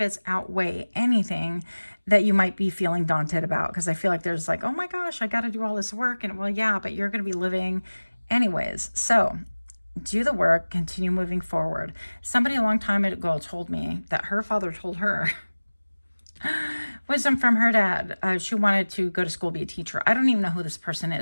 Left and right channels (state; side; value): inverted; both; correlation -1.00